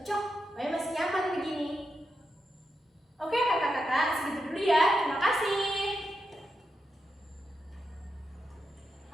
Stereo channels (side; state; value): both; normal; correlation 0.86